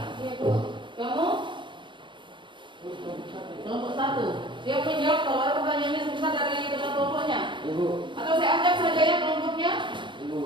Iya Bu. Kamu? Kelompok 1. Siap menjawab kalau ada pertanyaannya sebentar dari teman kelompoknya? Ibu, Atau saya ajak saja ya kelompoknya?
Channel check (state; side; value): late; left; 0.23 ms